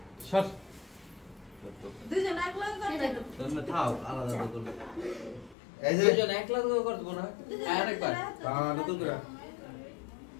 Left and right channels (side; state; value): right; drops out; at 5.6 s